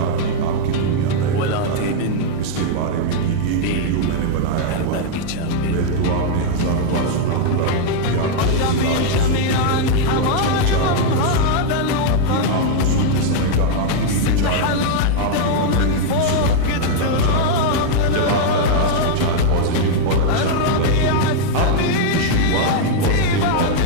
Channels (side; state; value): both; different; correlation -0.01